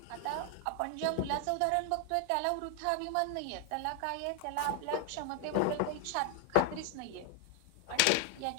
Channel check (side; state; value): both; different; correlation 0.00